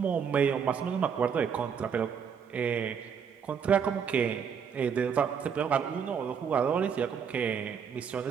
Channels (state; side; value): quieter; left; 7.0 dB